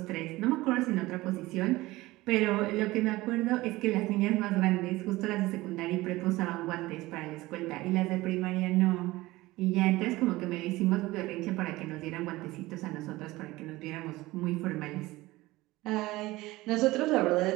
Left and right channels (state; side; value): quieter; left; 19.2 dB